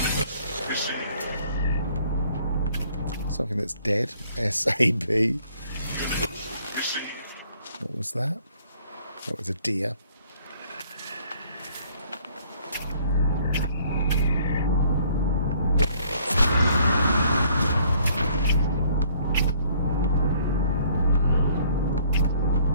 Something that's dead. SAB. What was that? That was a deer.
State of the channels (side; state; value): both; inverted; correlation -0.61